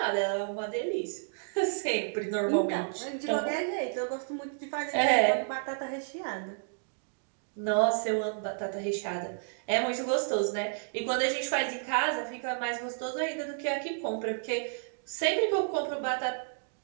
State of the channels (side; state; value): left; silent; digital silence